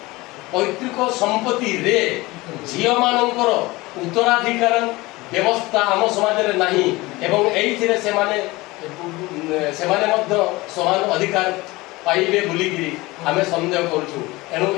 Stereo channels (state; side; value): quieter; right; 21.2 dB